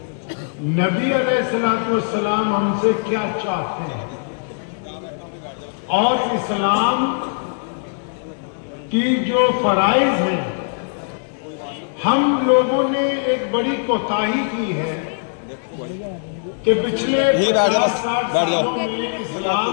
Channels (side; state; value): right; silent; digital silence